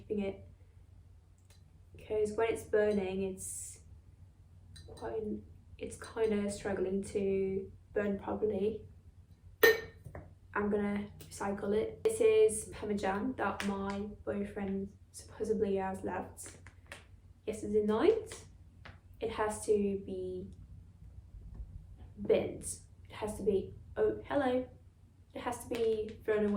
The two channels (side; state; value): both; identical; correlation 1.00